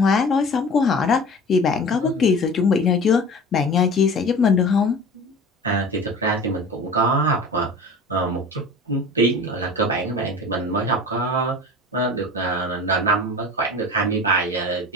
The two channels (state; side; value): normal; both; correlation 0.38